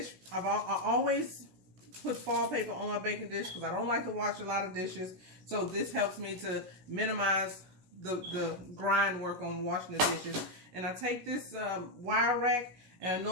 I always put foil paper on my baking dish because I don't like to wash a lot of dishes. So this helps me to minimize the grind work on washing the dishes. And I take this wire rack, and I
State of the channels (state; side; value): late; left; 16 ms